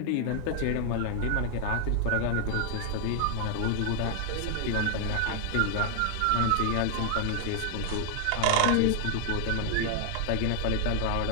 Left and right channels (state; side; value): different; both; correlation 0.00